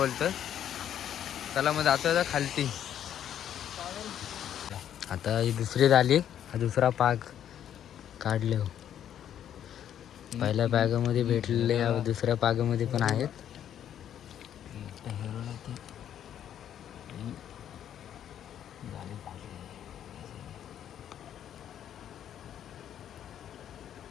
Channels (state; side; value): quieter; right; 10.1 dB